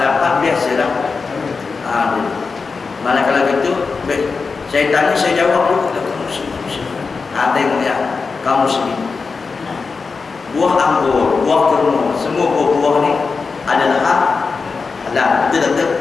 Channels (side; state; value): right; quieter; 4.7 dB